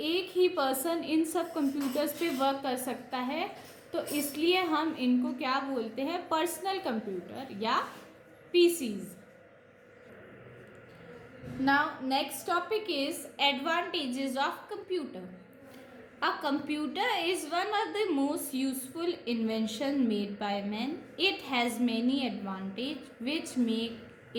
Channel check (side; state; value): both; identical; correlation 1.00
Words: एक ही पर्सन इन सब कंप्यूटर्स पे वर्क कर सकता है, तो इसलिए हम इनको क्या बोलते हैं? पर्सनल कंप्यूटर या PCs. Now next topic is advantages of computer. A computer is one of the most useful invention made by man. It has many advantages which make